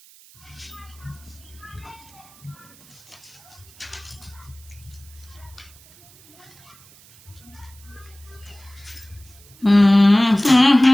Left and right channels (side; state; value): right; noise; hiss, 25 dB below the sound